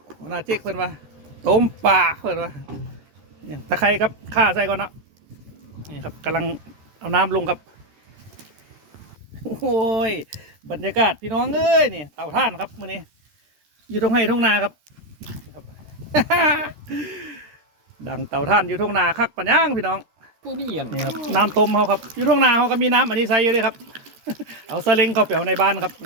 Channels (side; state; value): left; late; 13 ms